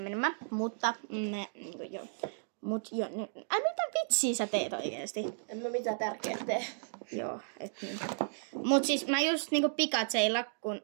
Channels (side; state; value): left; silent; digital silence